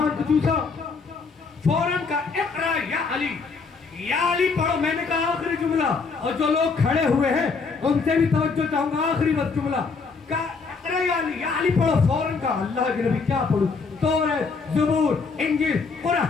کو چوسا، فوراً کا اقرا یا علی، یا علی پڑھو۔ میں نے کہا آخری جملہ، اور جو لوگ کھڑے ہوئے ہیں ان سے بھی توجہ چاہوں گا، آخری بس جملہ کہا اقرا یا علی پڑھو۔ فوراً کا اللہ کے نبی کیا پڑھوں؟ توریت، زبور، انجیل،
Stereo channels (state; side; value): quieter; right; 4.7 dB